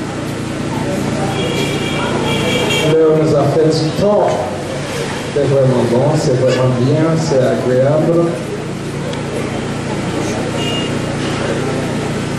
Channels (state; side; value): identical; both; correlation 1.00